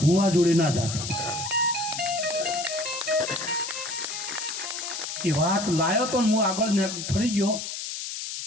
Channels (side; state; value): left; noise; hiss, 6 dB below the sound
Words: ભૂવા જોડે ના જતા. એ વાત લાયો તો હું આગળ ને ફરી ગયો